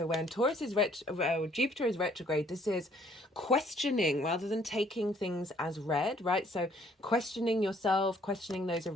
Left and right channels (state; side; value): normal; both; correlation 0.62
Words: when Jupiter is retrograde, this is questioning rather than taking things as read, right? So questioning yourself, questioning those